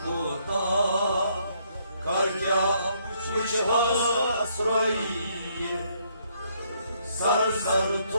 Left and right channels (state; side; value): inverted; both; correlation -0.70